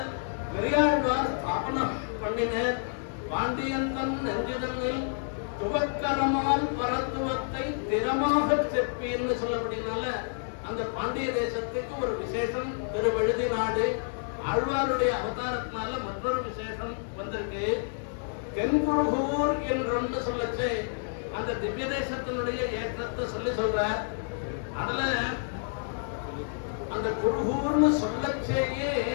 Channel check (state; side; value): silent; right; digital silence